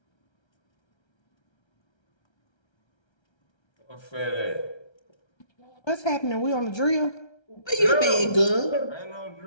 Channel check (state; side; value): late; right; 1.3 ms